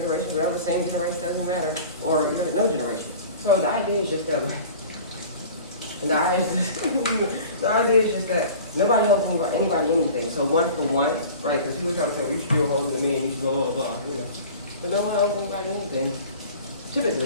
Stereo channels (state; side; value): inverted; both; correlation -0.41